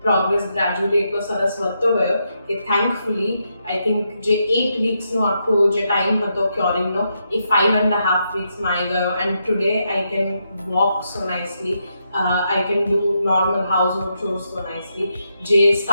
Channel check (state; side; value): inverted; both; correlation -0.81